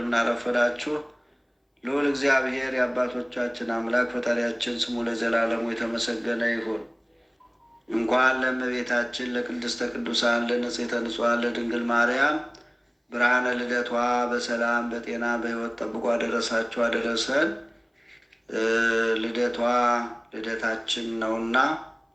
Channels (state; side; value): identical; both; correlation 1.00